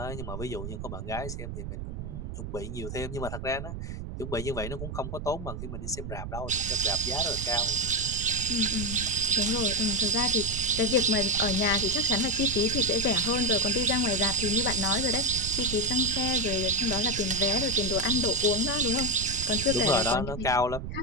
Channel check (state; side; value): noise; right; rumble, 7 dB below the sound